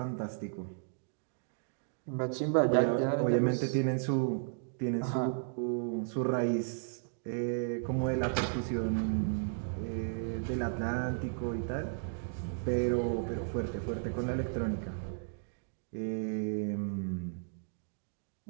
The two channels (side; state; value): left; silent; digital silence